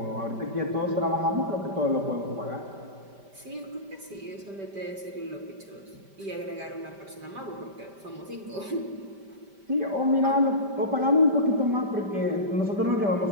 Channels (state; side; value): late; left; 5.1 ms